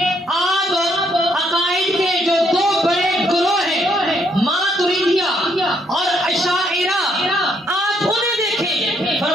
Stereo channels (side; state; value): both; normal; correlation 0.71